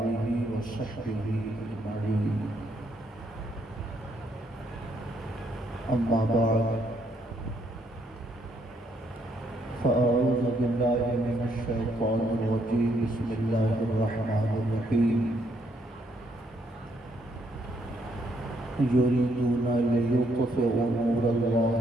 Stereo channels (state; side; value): normal; both; correlation 0.73